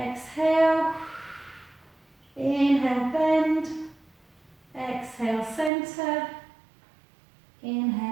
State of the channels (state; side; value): drops out; left; at 5.7 s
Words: Inhale, bend. Exhale, center.